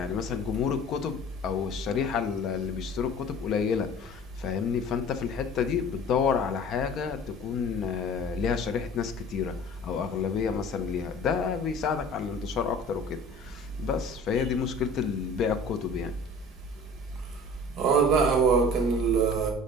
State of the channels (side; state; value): both; normal; correlation 0.44